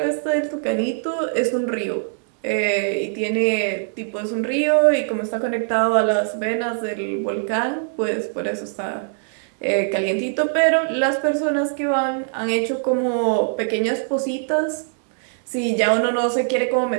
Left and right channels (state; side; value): silent; left; digital silence